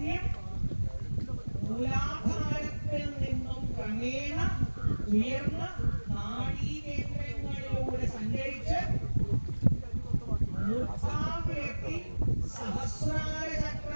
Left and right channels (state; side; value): inverted; both; correlation -1.00